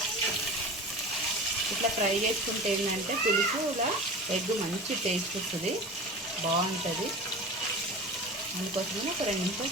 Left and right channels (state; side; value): normal; both; correlation 0.34